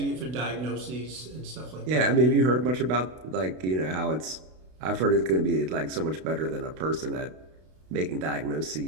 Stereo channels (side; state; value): left; late; 32 ms